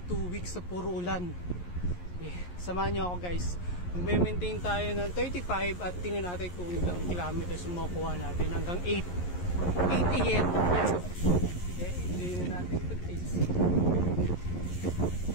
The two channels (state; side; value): late; right; 11 ms